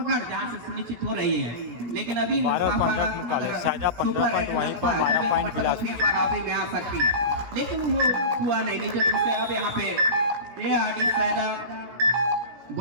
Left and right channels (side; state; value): left; late; 17 ms